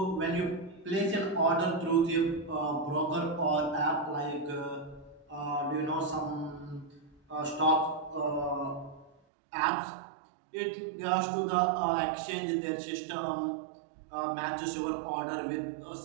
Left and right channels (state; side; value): drops out; left; at 9.1 s